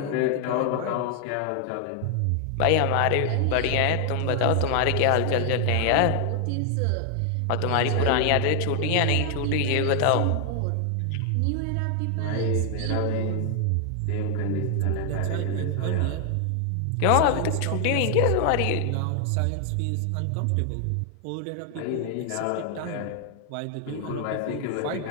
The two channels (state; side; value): different; both; correlation 0.00